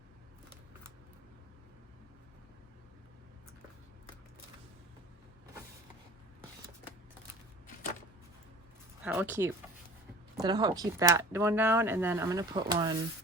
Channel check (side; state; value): both; normal; correlation 0.44